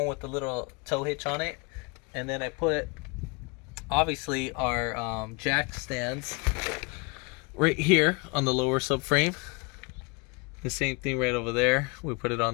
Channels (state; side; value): quieter; right; 30.4 dB